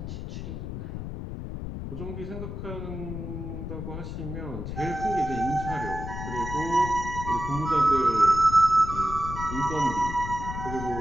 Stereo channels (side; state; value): left; noise; rumble, 7 dB below the sound